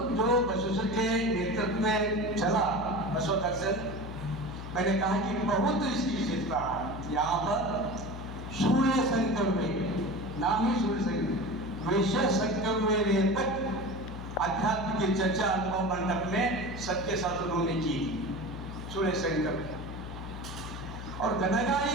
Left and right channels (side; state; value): left; noise; hum, 9 dB below the sound